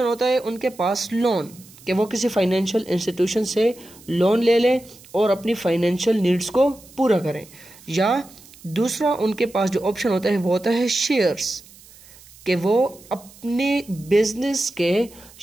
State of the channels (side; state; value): right; noise; hiss, 23 dB below the sound